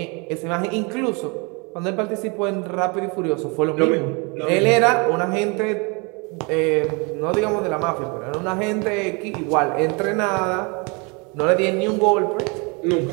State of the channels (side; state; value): left; quieter; 30.8 dB